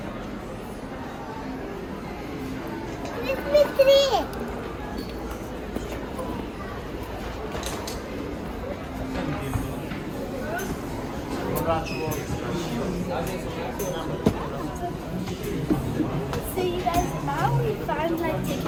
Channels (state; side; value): identical; both; correlation 1.00